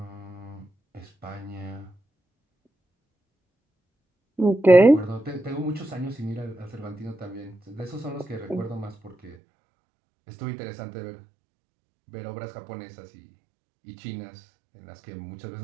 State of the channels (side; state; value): left; drops out; at 9.3 s